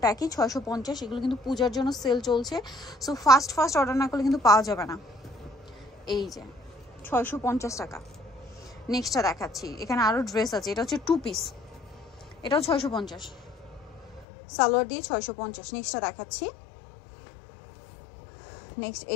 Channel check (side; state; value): right; drops out; at 14.2 s